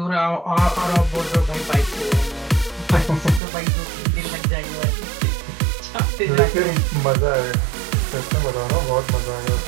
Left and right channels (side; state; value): left; drops out; at 3.4 s